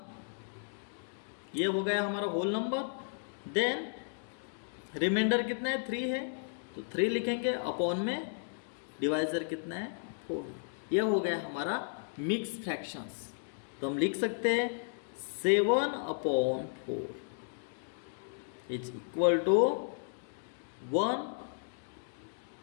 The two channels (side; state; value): right; silent; digital silence